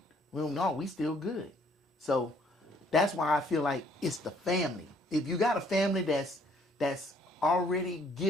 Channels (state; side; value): normal; both; correlation 0.63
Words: we still good. So that's why I feel like it's the family. If you got a family that's already